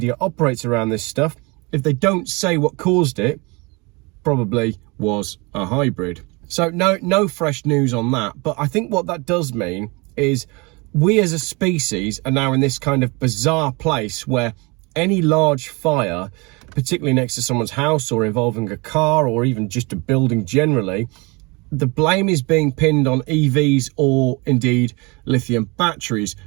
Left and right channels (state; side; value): quieter; left; 27.6 dB